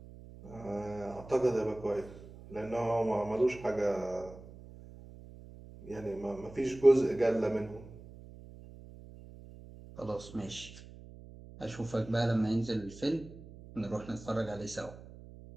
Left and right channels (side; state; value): right; noise; hum, 17 dB below the sound